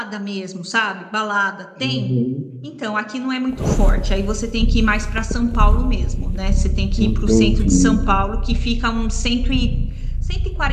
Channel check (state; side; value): identical; both; correlation 1.00